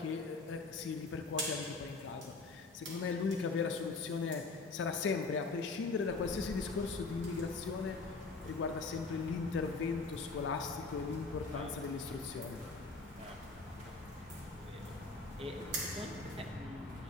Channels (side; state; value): right; quieter; 3.9 dB